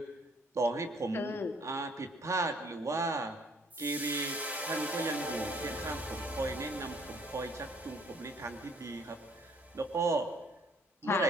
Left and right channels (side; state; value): both; normal; correlation 0.61